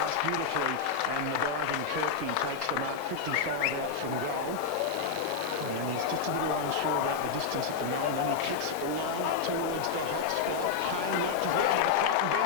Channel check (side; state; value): right; quieter; 5.8 dB